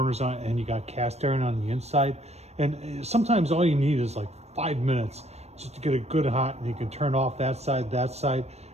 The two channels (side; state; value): left; late; 0.31 ms